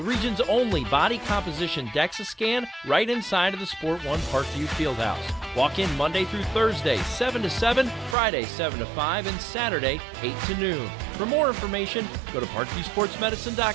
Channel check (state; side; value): drops out; left; at 8.2 s